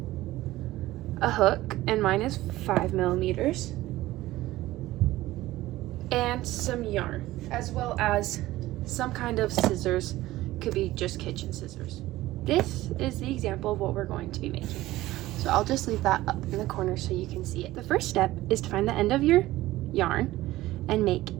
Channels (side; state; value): left; quieter; 16.7 dB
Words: a hook, and mine is 5 millimeters, and some yarn, as well as some kind of scissors. Could be just kitchen scissors. This is the example of what we're going to be making. So I'll just leave that up in the corner so you can see it. The first step is to find the end of your yarn and make